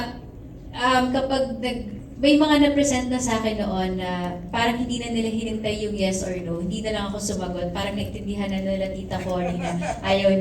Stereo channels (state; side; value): identical; both; correlation 1.00